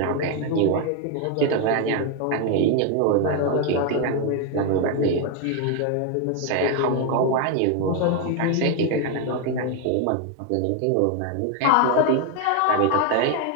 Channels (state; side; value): different; both; correlation 0.01